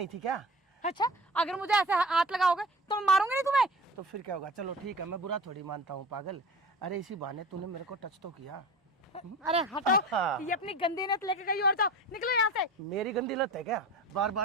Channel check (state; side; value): normal; both; correlation 0.36